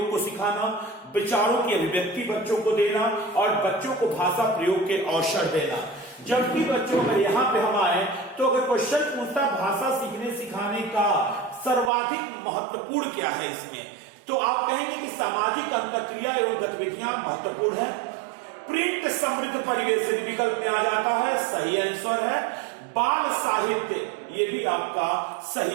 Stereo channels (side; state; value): left; drops out; at 11.9 s